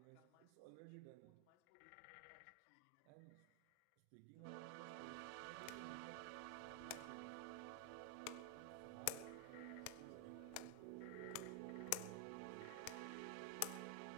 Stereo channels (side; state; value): both; different; correlation 0.00